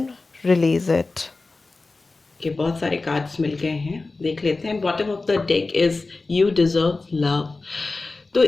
release it. के बहुत सारे कार्ड्स मिल गए हैं, देख लेते हैं। Bottom of the deck is you deserve love. तो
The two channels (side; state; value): right; quieter; 3.6 dB